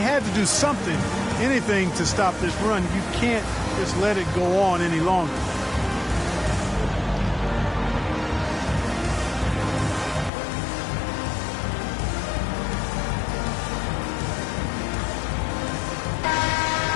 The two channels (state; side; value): drops out; right; at 10.3 s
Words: to do something, anything to stop this run. You can't just let it go on any longer.